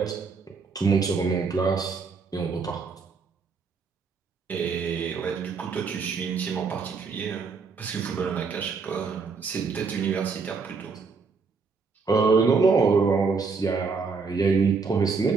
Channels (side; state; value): left; quieter; 4.9 dB